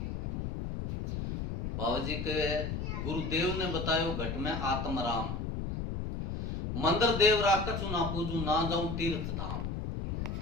बाबा जी के गुरुदेव ने बतायो घट में आत्म राम, मंदिर देवरा कछु ना पूजू, ना जाऊं तीर्थ धाम।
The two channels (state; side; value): noise; left; rumble, 3 dB below the sound